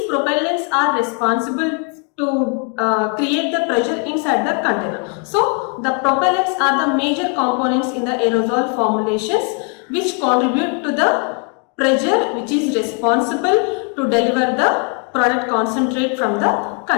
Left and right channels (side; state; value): right; quieter; 39.0 dB